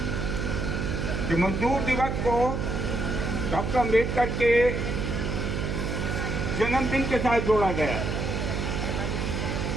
कि मजदूर दिवस को डॉक्टर अम्बेडकर के जन्मदिन के साथ जोड़ा गया।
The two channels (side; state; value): right; noise; hum, 2 dB below the sound